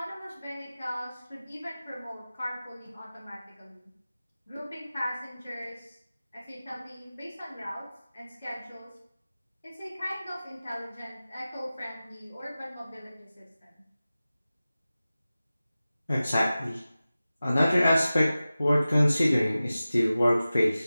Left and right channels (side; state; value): both; inverted; correlation -0.96